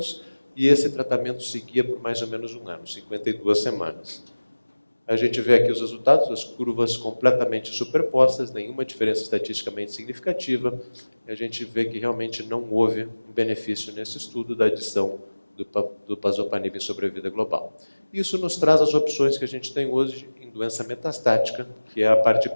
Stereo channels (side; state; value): both; inverted; correlation -1.00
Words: e esse tratamento seguia por mais ou menos um ano, 52 semanas. A gente vê aqui os resultados, as curvas completamente superpostas, nenhuma diferença estatisticamente significativa, e a gente vê que realmente não houve um benefício nesse estudo da adição do pazopanib em sobrevida global. Isso nos traz as opções que a gente tem hoje em doença metastática, que é a parte